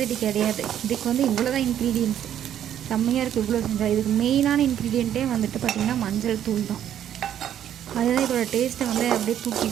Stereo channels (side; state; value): left; quieter; 10.4 dB